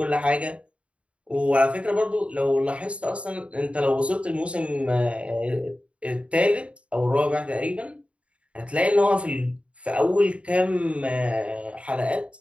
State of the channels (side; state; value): left; late; 0.061 ms